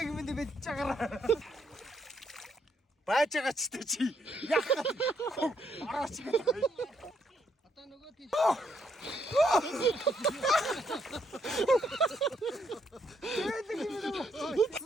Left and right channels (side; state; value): both; normal; correlation 0.74